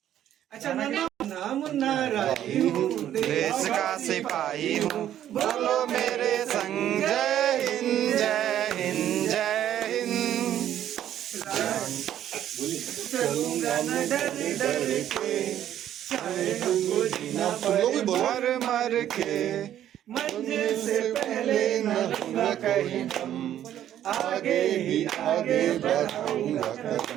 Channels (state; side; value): quieter; left; 11.3 dB